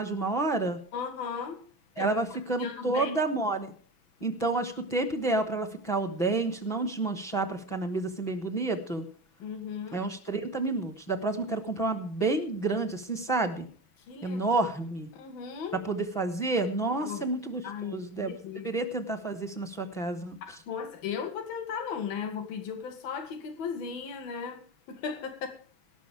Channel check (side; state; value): right; late; 6.1 ms